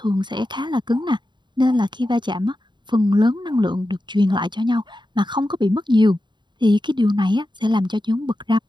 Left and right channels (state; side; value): late; left; 0.22 ms